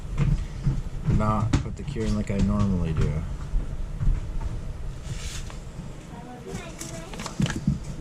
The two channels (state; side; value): identical; both; correlation 1.00